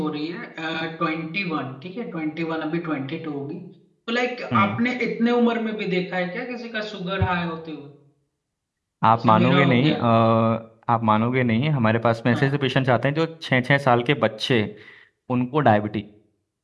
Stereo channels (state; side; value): identical; both; correlation 1.00